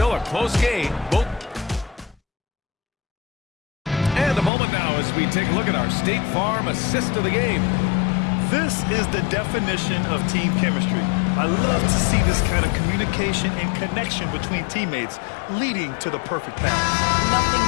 a close game. Both. And a moment now as we take a look at our State Farm assist of the game. This is the definition of team chemistry. I love to see this kind of communication and connection between teammates leading to the perfect pass. Nothing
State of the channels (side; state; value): right; drops out; at 4.5 s